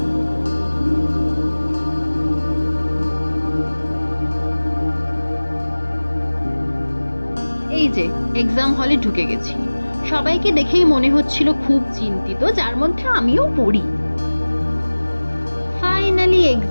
এই যে এক্সাম হলে ঢুকে গেছি। সবাইকে দেখেই মনে হচ্ছিল খুব চিন্তিত, যার মধ্যে আমিও পড়ি। ফাইনালি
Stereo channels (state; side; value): inverted; both; correlation -1.00